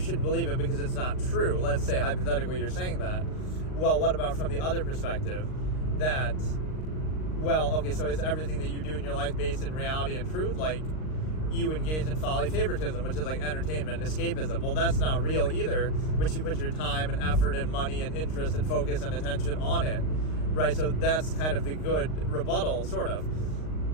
believe it because it's not true. Let's say hypothetically you're saying that. Well, what about from the other perspective that, well, okay, so is everything that you do in your life based in reality and truth? Like, you engage in folly favoritism, which is like entertainment, escapism. Well, that's not real either, but you put your time and effort and money and interest and focus and attention on it, right? So that's kind of the good rebuttal, sort of.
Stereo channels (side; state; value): right; late; 39 ms